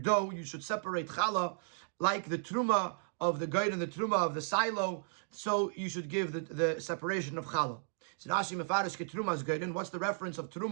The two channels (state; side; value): silent; left; digital silence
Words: you should separate challah like the truma of the gerin and the truma of the silo. So you should give the separation of challah. So Rashi mefarish ke trumas gerin. What's the reference of